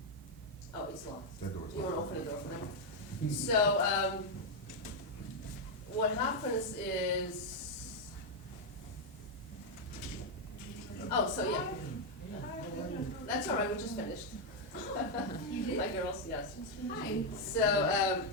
oh, it's locked. That door's You want to locked. open the door for them? So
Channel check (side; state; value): both; normal; correlation 0.01